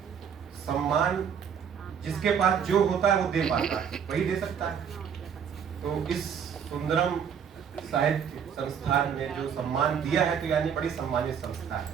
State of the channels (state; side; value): quieter; left; 7.7 dB